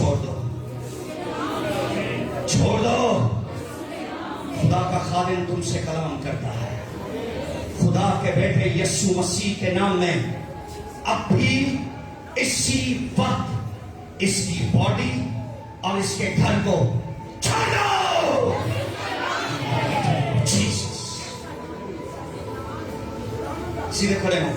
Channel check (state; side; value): identical; both; correlation 1.00